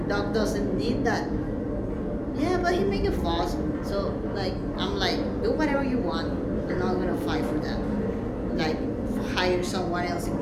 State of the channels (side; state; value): both; identical; correlation 1.00